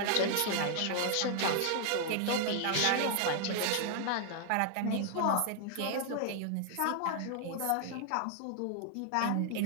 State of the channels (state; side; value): different; both; correlation 0.00